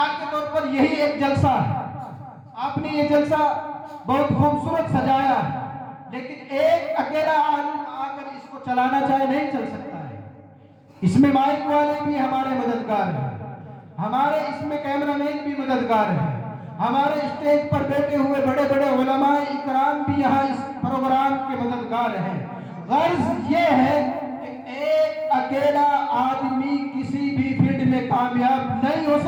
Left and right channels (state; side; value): identical; both; correlation 1.00